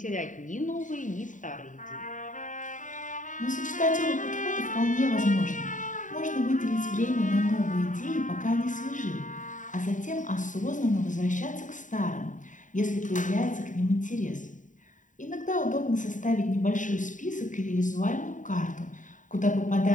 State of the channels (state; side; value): late; right; 0.37 ms